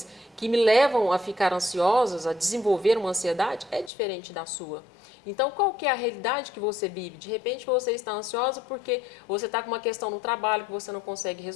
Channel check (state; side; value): drops out; right; at 3.9 s